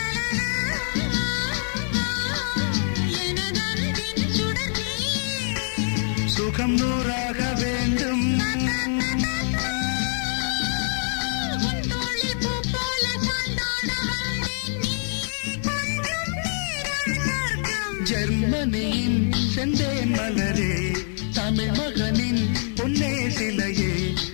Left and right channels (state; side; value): silent; right; 62 dB below the other